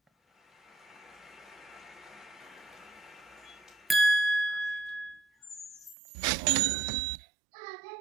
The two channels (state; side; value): drops out; left; at 6.0 s